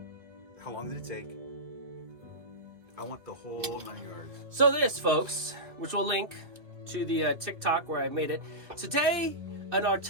How long did it take? I want the whole 9 yards. So this, folks, which we'll link to the TikTok where I made it. Today, in our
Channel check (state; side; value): late; left; 2.3 ms